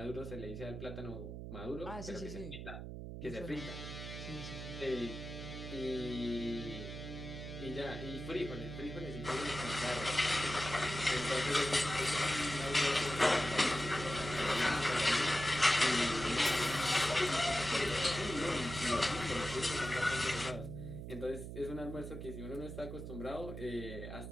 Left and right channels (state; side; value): noise; right; hum, 8 dB below the sound